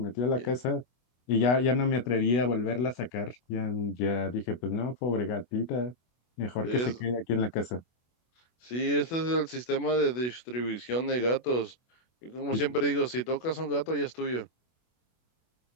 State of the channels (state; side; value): late; right; 24 ms